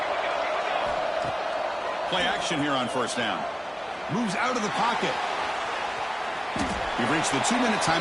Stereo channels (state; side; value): identical; both; correlation 1.00